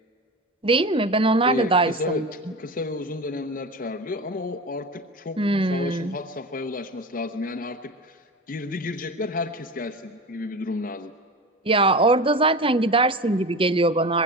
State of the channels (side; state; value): both; normal; correlation 0.29